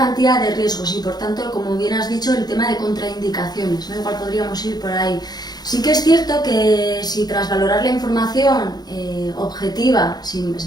de riesgos y por tanto, como bien has dicho, el tema de contraindicaciones, ¿no? Igual podríamos ir por ahí. Sí que es cierto que si tras valorar la información objetiva, es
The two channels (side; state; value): right; late; 0.19 ms